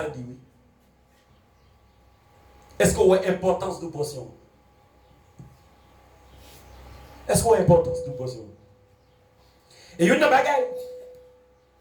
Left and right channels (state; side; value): identical; both; correlation 1.00